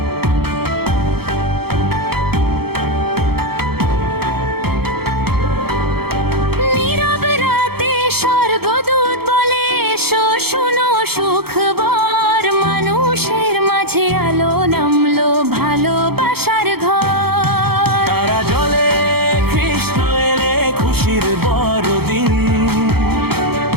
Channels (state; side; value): late; left; 0.96 ms